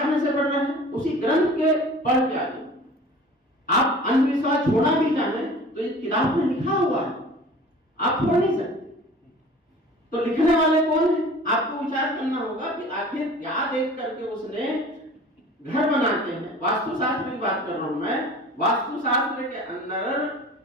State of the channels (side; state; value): both; normal; correlation 0.43